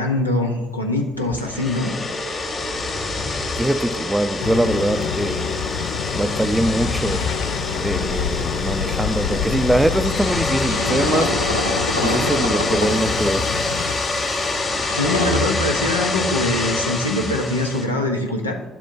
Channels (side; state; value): both; normal; correlation 0.61